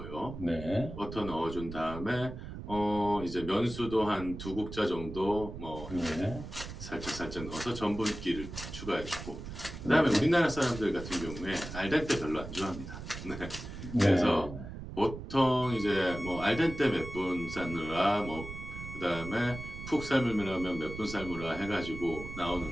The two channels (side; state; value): right; noise; rumble, 10 dB below the sound